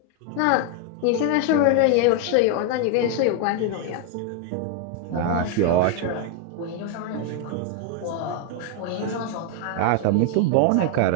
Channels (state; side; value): different; both; correlation 0.00